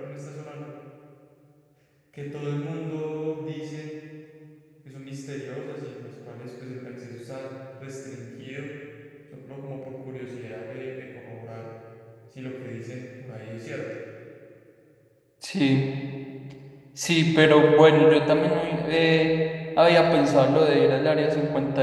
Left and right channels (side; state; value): both; identical; correlation 1.00